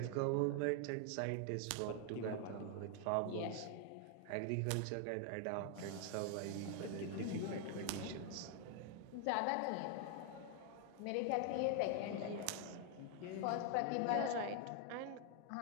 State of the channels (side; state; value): both; different; correlation 0.00